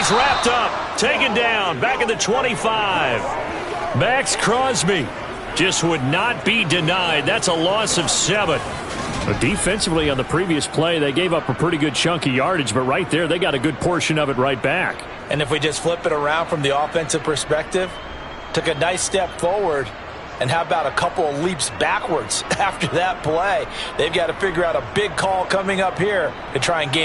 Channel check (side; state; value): both; identical; correlation 1.00